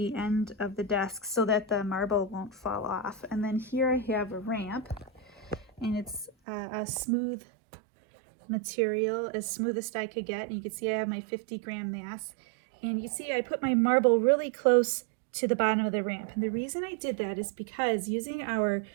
end of the desk so that the marble won't fall off. And then here I have a ramp, and it's a smooth material, as smoothest I could get. And you can see I have my 50-gram mass. And you see I put my marble really close to the bottom of the ramp. And the reason I did that is because using our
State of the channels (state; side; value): drops out; left; at 6.3 s